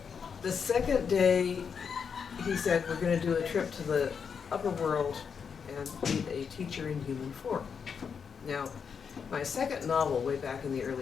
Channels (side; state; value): right; quieter; 6.5 dB